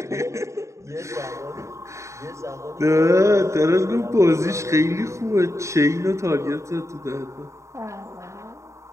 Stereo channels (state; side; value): late; left; 0.14 ms